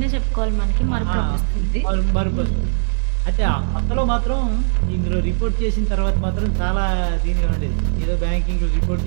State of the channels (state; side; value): silent; left; digital silence